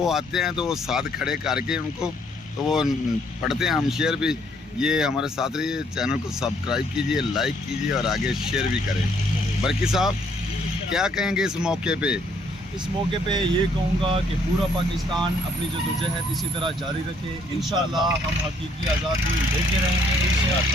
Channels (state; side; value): normal; both; correlation 0.67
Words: آتے ہیں تو وہ ساتھ کھڑے کر کے ان کو تو وہ پڑھتے ہیں، ہم شیئر بھی. یہ ہمارے ساتھ رہیے، چینل کو سبسکرائب کیجئے، لائک کیجئے اور آگے شیئر بھی کریں. برکی صاحب کیا کہیں گے اس موقع پہ؟ اس موقع پہ یہ کہوں گا کہ پورا پاکستان اپنی جدوجہد اسی طرح جاری رکھے. انشاءاللہ ہم حقیقی آزادی لے کے رہیں گے